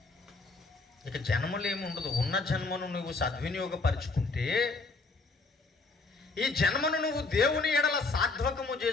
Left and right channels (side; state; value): right; quieter; 3.8 dB